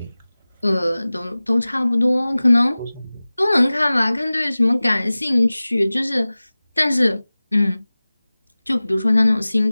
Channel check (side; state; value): both; inverted; correlation -0.98